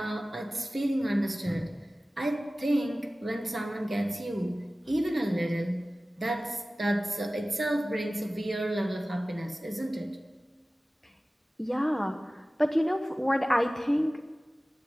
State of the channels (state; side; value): normal; both; correlation 0.97